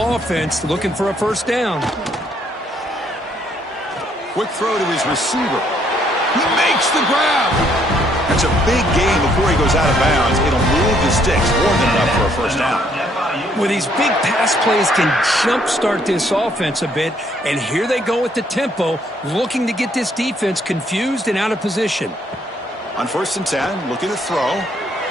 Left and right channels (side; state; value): both; normal; correlation 0.68